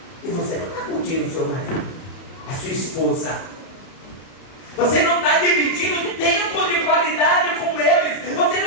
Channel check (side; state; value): right; late; 30 ms